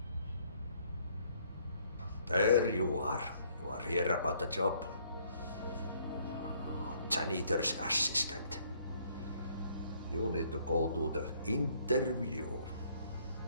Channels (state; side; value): inverted; both; correlation -0.64